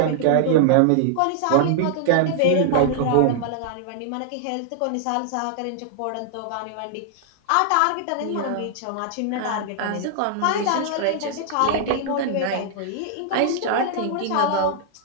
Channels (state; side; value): different; both; correlation -0.01